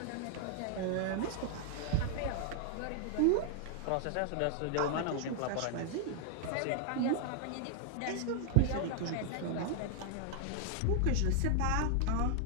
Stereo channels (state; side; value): different; both; correlation 0.00